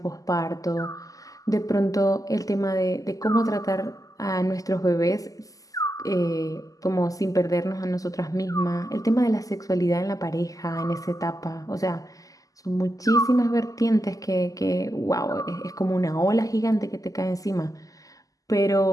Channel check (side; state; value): right; late; 0.17 ms